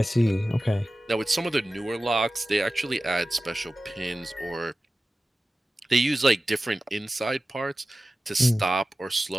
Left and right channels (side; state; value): both; normal; correlation 0.95